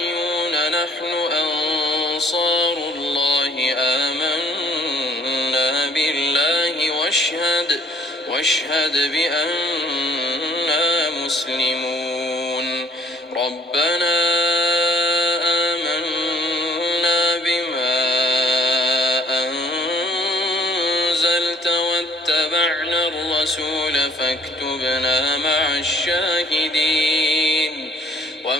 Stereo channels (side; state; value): both; normal; correlation 0.58